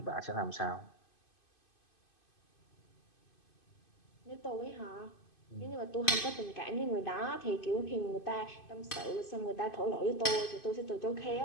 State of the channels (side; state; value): right; late; 2.5 ms